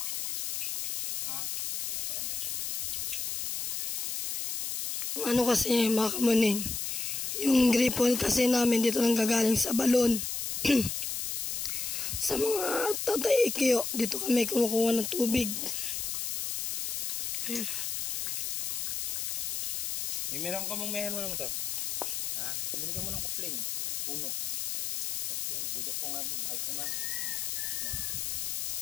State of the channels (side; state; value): left; noise; hiss, 2 dB below the sound